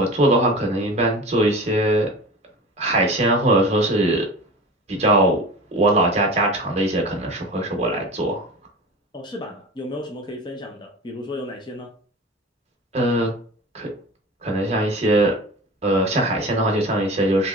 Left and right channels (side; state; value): both; normal; correlation 0.34